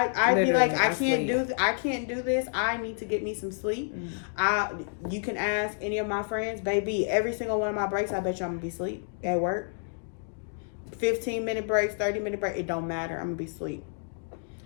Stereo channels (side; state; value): right; silent; digital silence